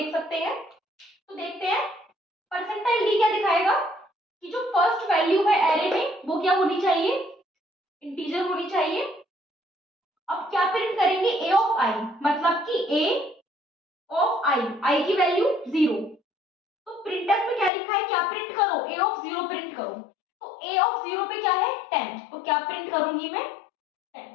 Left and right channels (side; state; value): right; drops out; at 17.7 s